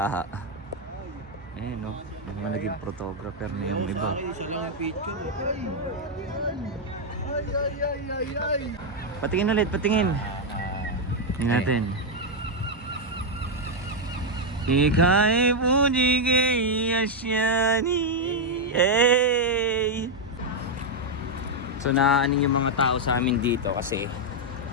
Ayan no, mga naging photographer na yung iba. Patingin ulit, patingin. Tingnan natin. Ika'y puji kay asyani. Hey! So naaning yung mga tao sa amin dito kasi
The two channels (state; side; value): normal; both; correlation -0.01